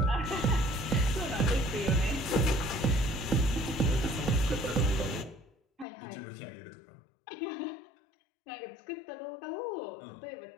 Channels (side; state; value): right; drops out; at 5.9 s